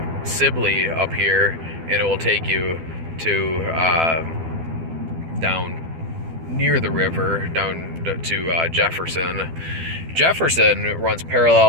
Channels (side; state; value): left; late; 12 ms